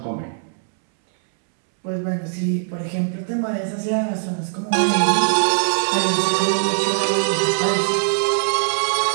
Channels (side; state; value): left; silent; 65 dB below the other